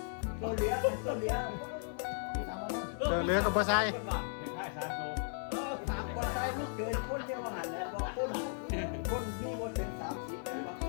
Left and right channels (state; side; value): silent; right; 54 dB below the other